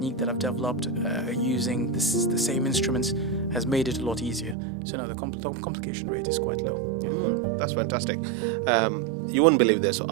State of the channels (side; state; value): left; drops out; at 4.5 s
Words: that I've developed using the same instruments has made it a lot easier. So now the complication rate is quite low. Yeah. That's fantastic. You won't believe this.